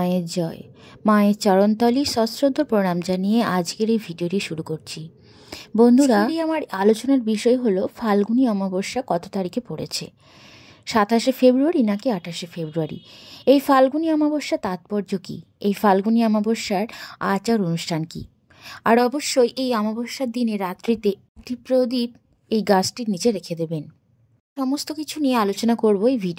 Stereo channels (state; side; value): identical; both; correlation 1.00